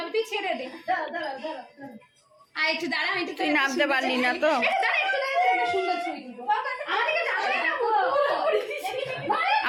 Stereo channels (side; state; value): both; identical; correlation 1.00